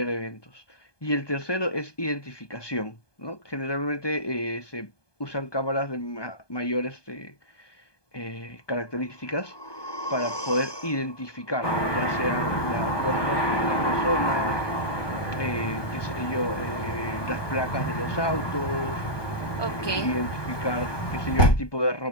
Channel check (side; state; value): right; late; 1.2 ms